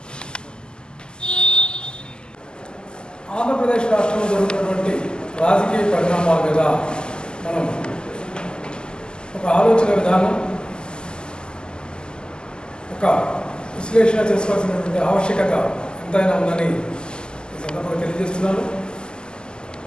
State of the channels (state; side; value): late; right; 0.046 ms